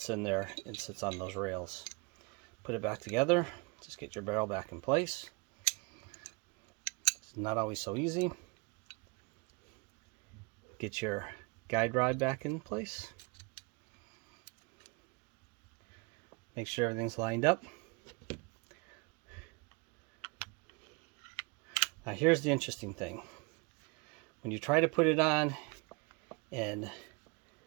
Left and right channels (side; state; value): left; quieter; 29.7 dB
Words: in there and sits on those rails. Put it back together. Just get your barrel back in place. It's not always so easy. Get your guide rod back in place. Make sure everything's lined up. Now here's the interesting thing. When you try to put it on and